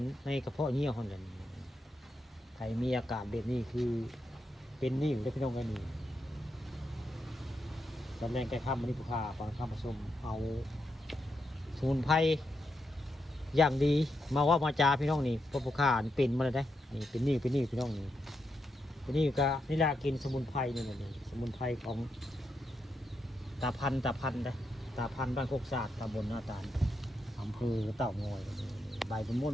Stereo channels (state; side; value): normal; both; correlation 0.83